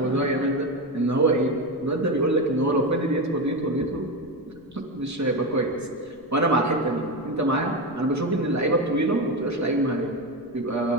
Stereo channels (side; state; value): left; noise; rumble, 30 dB below the sound